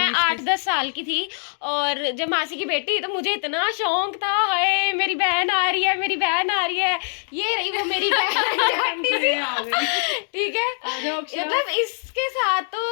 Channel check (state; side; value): silent; right; 64 dB below the other